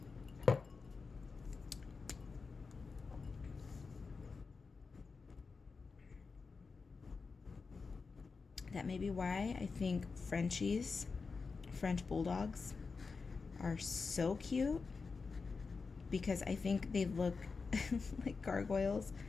That may be why I think Frenchies, French bulldogs, are so cute, because I think they look like gargoyles.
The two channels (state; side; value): quieter; right; 4.7 dB